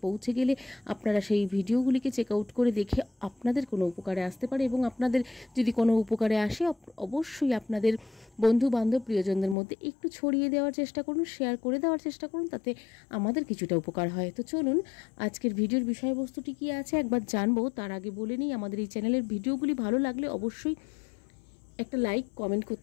পৌঁছে গেলে আপনারা সেই ভিডিওগুলিকে চেক আউট করে দেখে আপনাদের কোনো উপকারে আসতে পারে এবং আপনাদের যদি কোনো উপকারে আসে অবশ্যই আপনাদের বন্ধু বান্ধব প্রিয়জনদের মধ্যে একটু ছড়িয়ে দেওয়ার চেষ্টা করুন, শেয়ার করে দেওয়ার চেষ্টা করুন, তাতে আমাদের কিছুটা উপকার হয়। তো চলুন আজকের ভিডিওর বিষয়বস্তুটি কী আছে একবার জানবো। তার আগে বলে নিই, আমাদের এই চ্যানেলের ভিডিওগুলি ভালো লাগলে অবশ্যই একটা লাইক কমেন্ট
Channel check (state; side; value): drops out; right; at 9.6 s